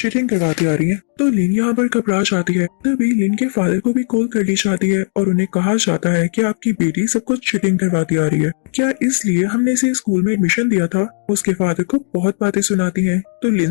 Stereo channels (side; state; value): right; silent; 68 dB below the other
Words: करवाती आ रही है। तो लिन यहाँ पर घबरा जाती है। तभी लिन के फादर को भी कॉल कर दी जाती है और उन्हें कहा जाता है कि आपकी बेटी सब कुछ चीटिंग करवाती आ रही है, क्या इसलिए हमने इसे स्कूल में एडमिशन दिया था। उसके फादर को बहुत बातें सुनाती है तो